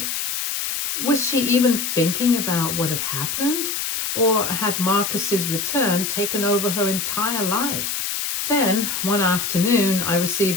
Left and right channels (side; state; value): left; noise; hiss, 2 dB below the sound